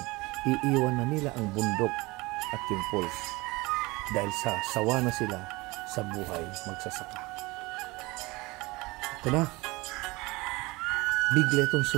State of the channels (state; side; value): quieter; left; 22.8 dB